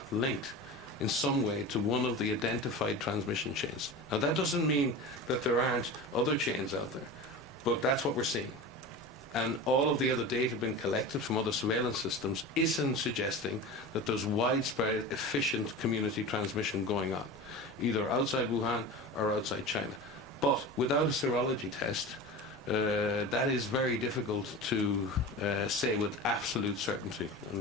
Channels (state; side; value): normal; both; correlation 0.30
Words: linked in some way to one of the identified transmission chains. Now that doesn't mean that there aren't other chains out there, but that's what we're seeing. And all of the other data being collected from other surveillance systems isn't suggesting that there's widespread, efficient community transmission going on, either outside Wuhan or outside China. But without a serology test, that is very difficult to say with absolute certainty.